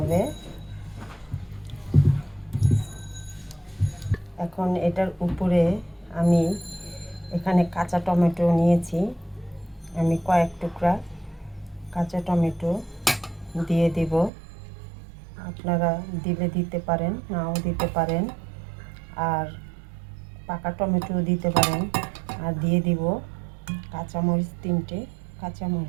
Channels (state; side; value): drops out; left; at 14.3 s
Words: এখন এটার উপরে আমি এখানে কাঁচা টমেটো নিয়েছি, আমি কয়েক টুকরা কাঁচা টমেটো দিয়ে দেব। আপনারা দিলে দিতে পারেন, নাও দিতে পারেন, আর পাকা টমেটো দিতে পারেন। আর দিয়ে দিব কাঁচামরিচ, 3টে